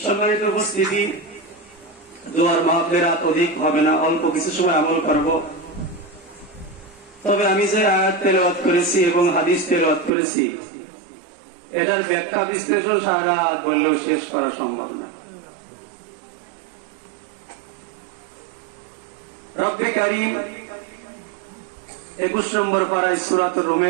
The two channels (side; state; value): left; drops out; at 10.1 s